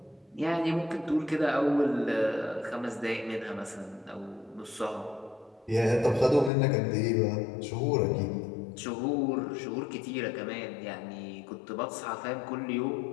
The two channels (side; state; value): right; drops out; at 6.5 s